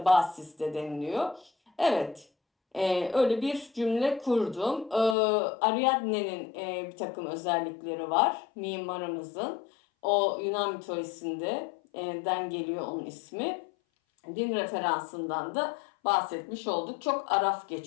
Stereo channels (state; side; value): drops out; right; at 5.2 s